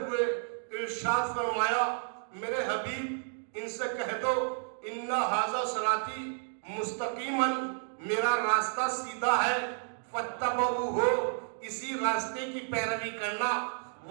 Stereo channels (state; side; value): silent; left; 57 dB below the other